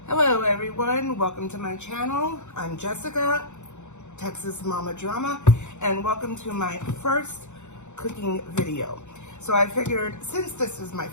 Hello everyone, welcome to my channel. I'm Jessica, Texas Mama Drama, and welcome to my first cooking video. So I figured since this is my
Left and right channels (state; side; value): late; right; 0.84 ms